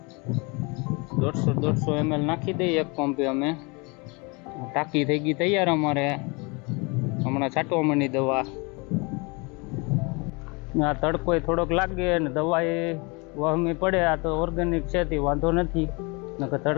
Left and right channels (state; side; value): quieter; right; 29.2 dB